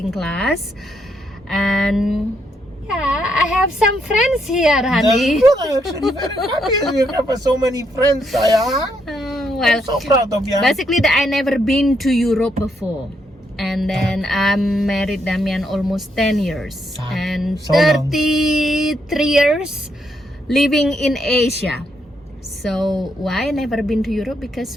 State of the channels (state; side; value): normal; both; correlation 0.76